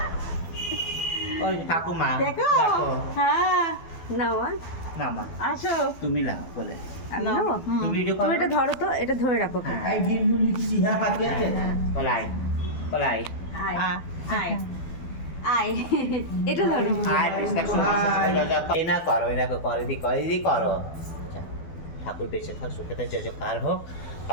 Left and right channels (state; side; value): late; right; 12 ms